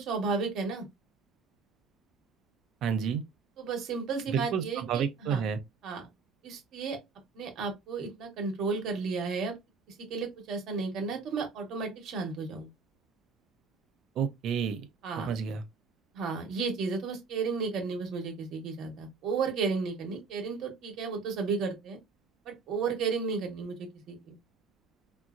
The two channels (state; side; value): quieter; left; 5.0 dB